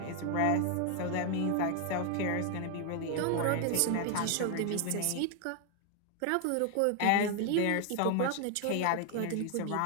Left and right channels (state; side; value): different; both; correlation 0.00